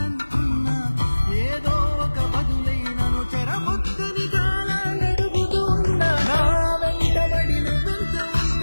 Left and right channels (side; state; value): both; inverted; correlation -1.00